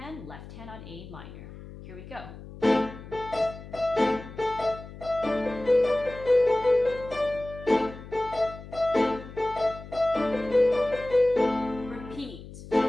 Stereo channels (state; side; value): noise; left; hum, 15 dB below the sound